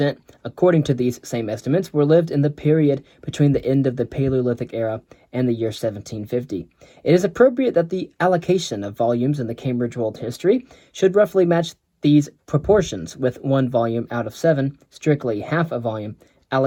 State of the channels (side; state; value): both; identical; correlation 1.00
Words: according to these same estimates, were lived in the period between the end of the Paleolithic era and the year 1750. It is appropriate that the allocation of volumes in the Cambridge World History should roughly match these proportions, with 1 volume out of 7, strictly half a volume,